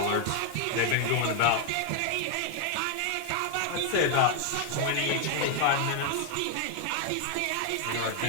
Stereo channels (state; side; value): different; both; correlation 0.00